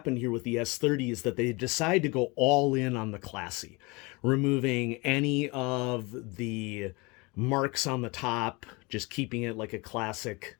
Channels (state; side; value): quieter; right; 26.5 dB